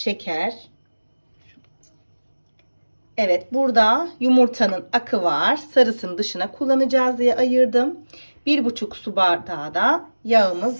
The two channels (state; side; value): inverted; both; correlation -1.00